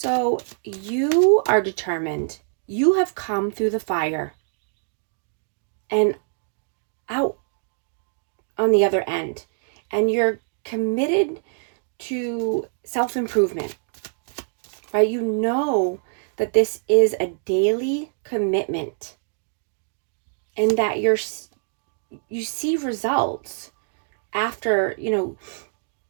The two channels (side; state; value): left; silent; digital silence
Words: you are determined. You have come through the fire and out on the other end, and you're committed to self-improvement, right? You know that this is a daily commitment and that you see results after, you